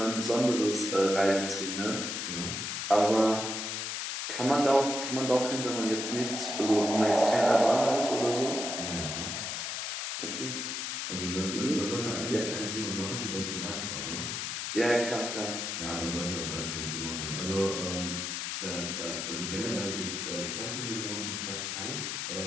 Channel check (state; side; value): noise; left; hiss, 3 dB below the sound